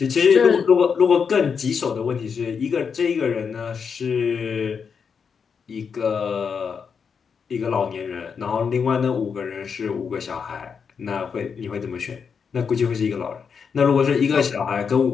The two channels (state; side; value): quieter; right; 6.3 dB